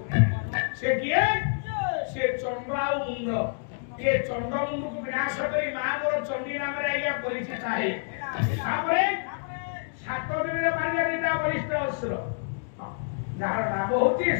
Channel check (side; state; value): right; silent; digital silence